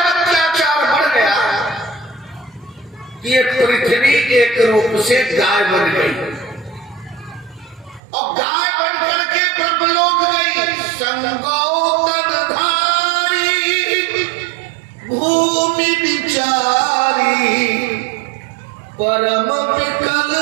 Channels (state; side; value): drops out; left; at 8.0 s